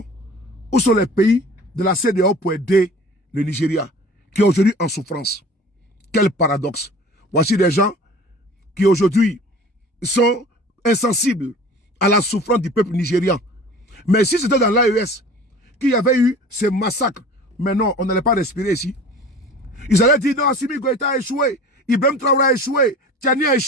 où sont les pays de la CEDEAO pour aider le Nigeria, qui est aujourd'hui en souffrance? Quel paradoxe. Voici des gens qui aujourd'hui sont insensibles à la souffrance du peuple nigérian. Mais si c'était dans l'AES qu'il y avait eu ces massacres, mais non, on n'allait pas respirer ici. Ils allaient dire non, Assimi Goïta a échoué, Ibrahim Traoré a échoué, Tiani a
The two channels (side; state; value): both; normal; correlation 0.42